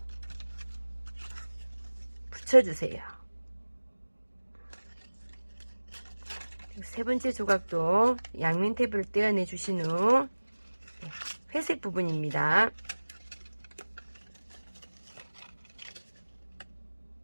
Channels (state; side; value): inverted; both; correlation -1.00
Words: 붙여주세요. 세 번째 조각도 양면 테이프를 떼어내 주신 후 회색 부분입니다.